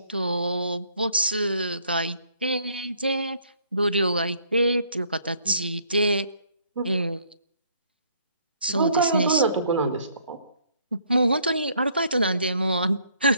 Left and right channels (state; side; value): inverted; both; correlation -0.64